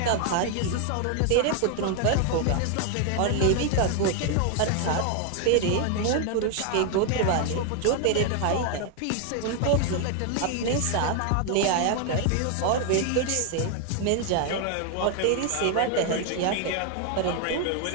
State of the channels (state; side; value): different; both; correlation 0.01